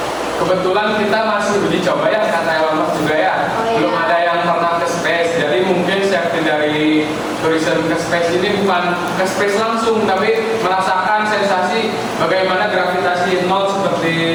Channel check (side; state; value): both; identical; correlation 1.00